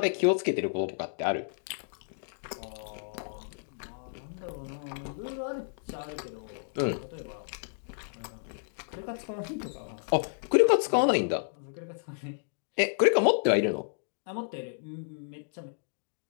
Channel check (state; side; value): silent; right; digital silence